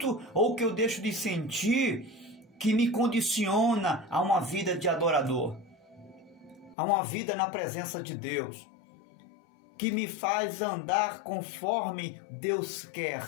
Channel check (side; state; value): right; drops out; at 6.8 s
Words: ou o que eu deixo de sentir que me condiciona a uma vida de adorador, a uma vida na presença de Deus, que me faz andar conforme Deus quer.